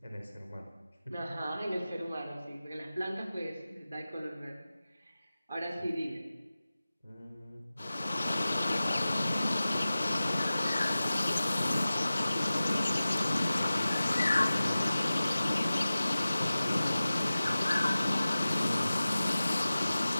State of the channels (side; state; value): both; inverted; correlation -0.96